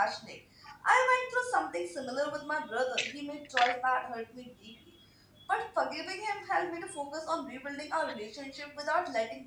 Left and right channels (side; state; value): both; identical; correlation 1.00